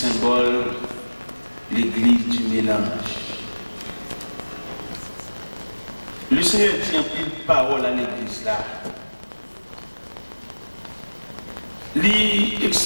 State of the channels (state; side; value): inverted; both; correlation -1.00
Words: l'église du mélange. Le Seigneur dit en pile parole à l'église là. Il